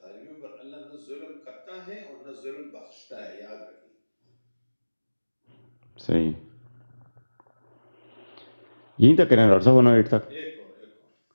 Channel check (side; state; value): both; inverted; correlation -1.00